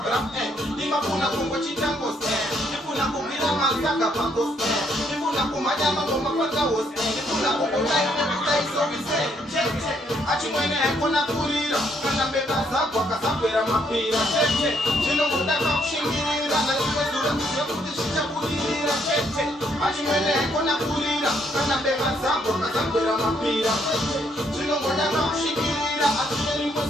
bra nimafuna kungo chitango nifuna kugira mazaka pako nifuna kumanyama ngoma paka wose nifuna kukutai nekutai sovise achimwene ekona kurira kana mbeba zako akasakwera mapira chinongotaka kushingirira naimezura kuti zvichabudirira achimwene ekona kurira kana mbeba zako akasakwera mapira chinongotaka kushingirira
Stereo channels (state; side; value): normal; both; correlation 0.71